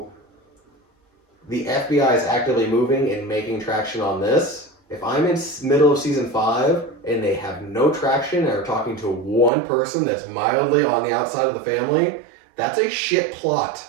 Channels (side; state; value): left; drops out; at 9.5 s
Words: the FBI is actively moving and making traction on this. If I'm in middle of season 5 and they have no traction and are talking to one person that's mildly on the outside of the family, that's a shit plot.